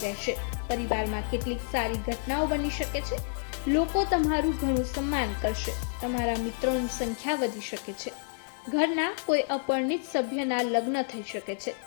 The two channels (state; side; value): silent; right; digital silence